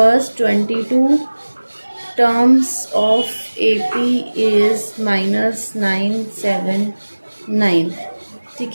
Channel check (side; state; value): both; inverted; correlation -1.00